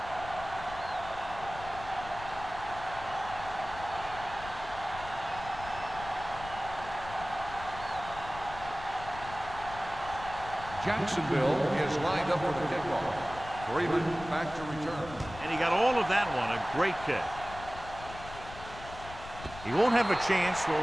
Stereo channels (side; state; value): left; noise; rumble, 14 dB below the sound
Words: Jacksonville is lined up for the kickoff. Freeman back to return. And he got all of that one, a great kick. He won't have a chance for